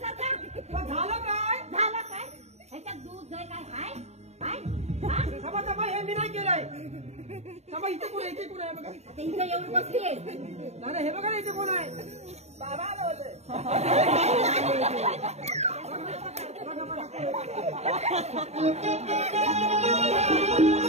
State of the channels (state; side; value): late; left; 0.32 ms